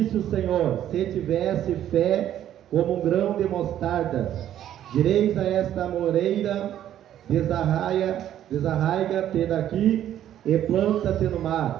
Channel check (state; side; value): quieter; left; 11.3 dB